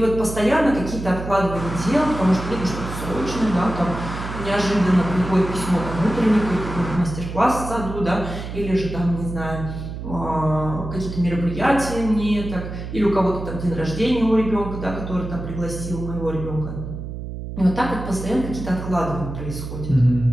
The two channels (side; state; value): right; noise; hum, 8 dB below the sound